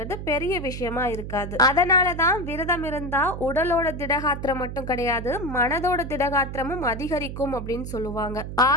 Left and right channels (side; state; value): right; noise; hum, 8 dB below the sound